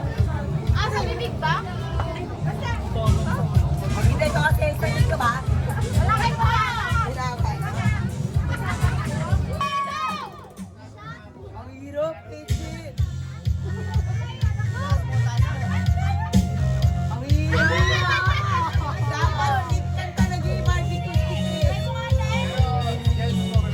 Sa bibig ba? Hindi ito kasi excited ka ba? Wala kayo pa! Ang hirap, Casey. Ang hirap. Dapat liptan ka naging barbecue stick.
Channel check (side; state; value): both; identical; correlation 1.00